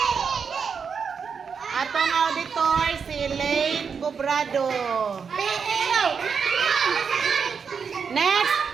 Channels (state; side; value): quieter; left; 6.1 dB